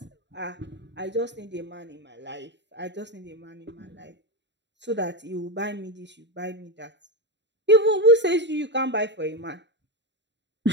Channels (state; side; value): late; left; 0.52 ms